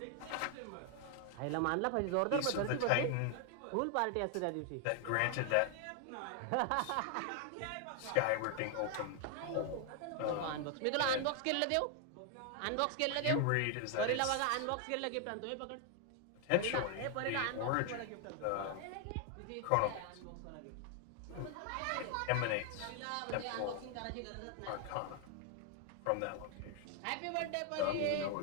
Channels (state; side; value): different; both; correlation 0.00